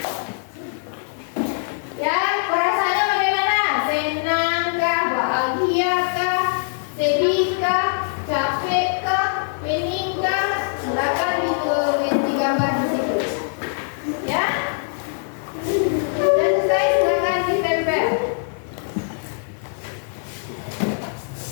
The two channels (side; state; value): right; silent; 64 dB below the other